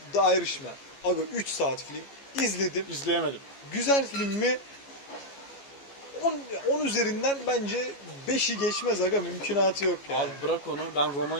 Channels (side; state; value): right; late; 14 ms